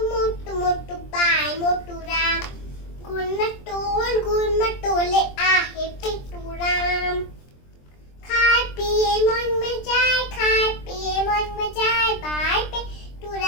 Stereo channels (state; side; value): late; right; 23 ms